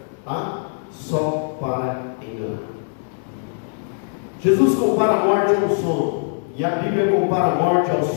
Tá? Só para enganar. Jesus compara a morte ao sono. E a Bíblia compara a morte ao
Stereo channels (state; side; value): silent; right; digital silence